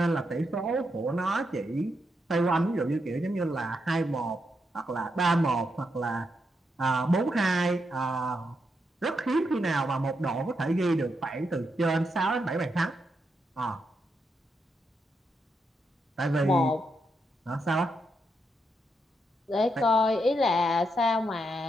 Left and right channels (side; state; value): both; normal; correlation 0.82